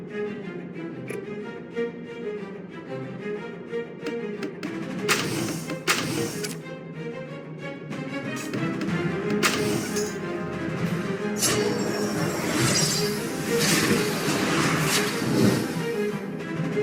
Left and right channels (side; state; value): both; identical; correlation 1.00